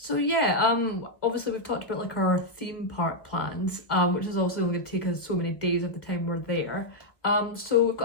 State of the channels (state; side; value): late; right; 1.1 ms